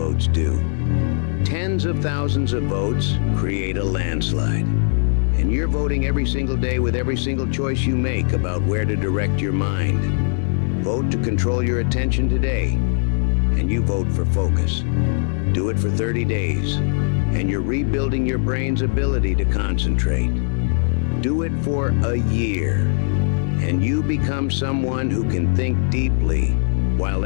do. Tens of thousands of votes create a landslide. And you're voting every single day with every single choice you make about where to direct your mind. Vote to control your attention today, and you vote for focus. Do it for 30 days, and you're rebuilding your brain's ability to concentrate. Do it for a year, and you become someone who can think deeply while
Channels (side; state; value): right; silent; digital silence